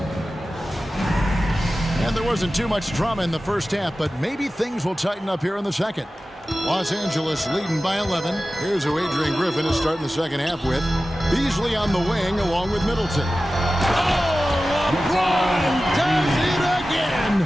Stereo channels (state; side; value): normal; both; correlation 0.95